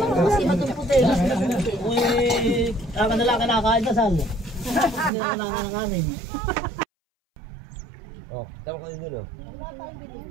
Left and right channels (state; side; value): drops out; left; at 5.1 s